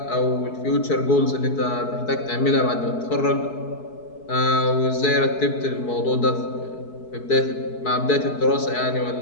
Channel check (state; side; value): late; right; 4.6 ms